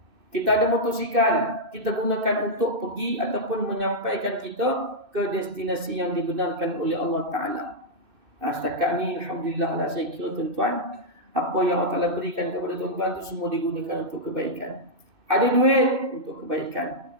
Kita ada motosikal, kita gunakan untuk pergi ataupun menyampaikan kita ke destinasi yang dibenarkan oleh Allah Ta'ala. Setakat ni Alhamdulillah lah, saya kira tuan-tuan, apa yang Allah Ta'ala berikan kepada tuan-tuan tu semua digunakan untuk kebaikan. Ada duit untuk kebaikan,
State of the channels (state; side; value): late; left; 2.6 ms